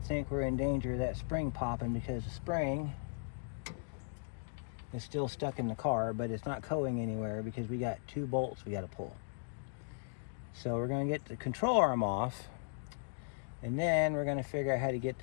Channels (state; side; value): silent; right; digital silence